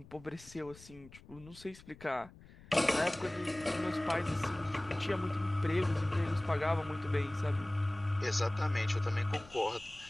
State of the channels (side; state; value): left; noise; rumble, 21 dB below the sound